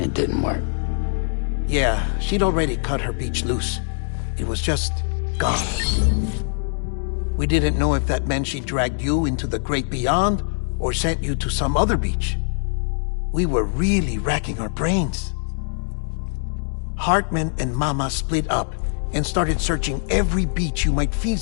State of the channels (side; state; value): right; silent; digital silence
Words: didn't work. Yeah, she'd already cut her beach loose. It was just gone. We didn't know if that meant she dragged you into the great beyond or sent you to some other beach. We were really racking our brains. Hartman and Mama split up, and started searching every beach you might